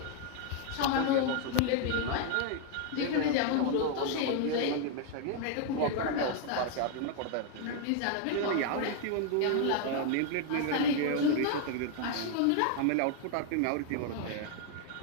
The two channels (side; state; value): both; different; correlation 0.00